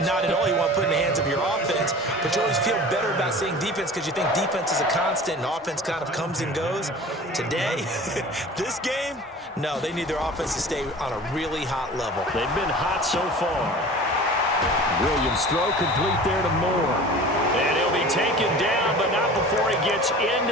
Not at all. You want to put it in the hands of your offense, but you always feel better about saying defense because you think defense is a constant and offense kind of comes and goes. Today, this game, no, they need their offense to stay on a really hot level. They've been hot so far. Williams throw complete there to Moore. And he'll be taken down, but not before he gets into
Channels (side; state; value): both; normal; correlation 0.40